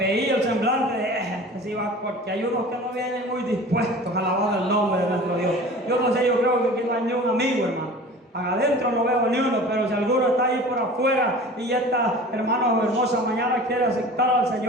el semblante de sí va, porque hay unos que no vienen muy dispuestos a alabar el nombre de nuestro Dios. Yo no sé, yo creo que aquí no hay ni un amigo, hermano. Adentro no veo ni uno, pero si alguno está ahí por afuera y esta, hermano, hermosa mañana quiere aceptar al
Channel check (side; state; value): both; normal; correlation 0.40